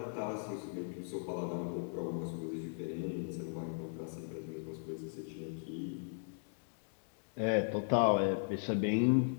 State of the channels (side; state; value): right; silent; digital silence